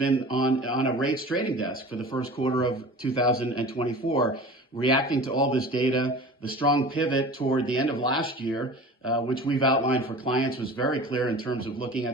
on a rates trading desk for the first quarter of 2024, reacting to all this data. The strong pivot toward the end of last year, which we've outlined for clients, was very clear in terms of looking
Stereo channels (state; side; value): normal; both; correlation 0.39